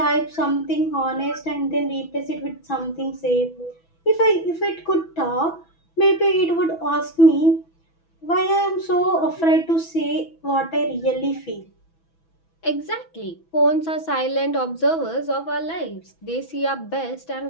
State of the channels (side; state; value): right; late; 6.1 ms